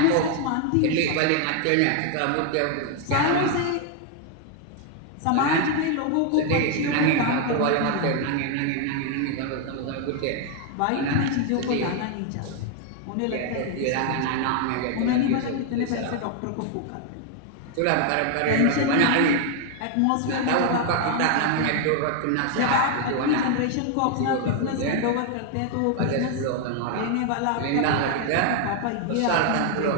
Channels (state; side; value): different; both; correlation 0.01